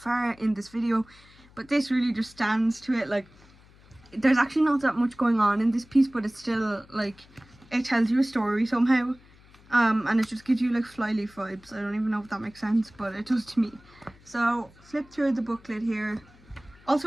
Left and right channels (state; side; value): noise; left; hum, 26 dB below the sound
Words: in this video, but this really just stands to it. Like, there's actually not that much going on in this piece, but it's still like, it tells you a story somehow. And it just gives you like Flyleaf vibes. I don't even know if that makes sense, but it does to me. So flip through the booklet here.